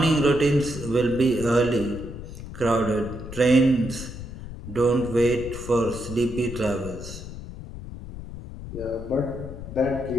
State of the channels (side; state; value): left; noise; rumble, 11 dB below the sound